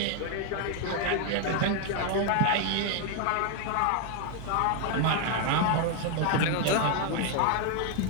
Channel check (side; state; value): both; different; correlation 0.01